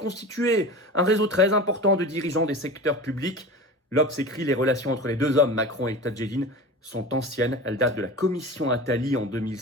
un réseau très important de dirigeants des secteurs publics. L'Obs écrit les relations entre les deux hommes, Macron et Tadjedine, sont anciennes. Elles datent de la commission Attali en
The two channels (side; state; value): both; normal; correlation 0.32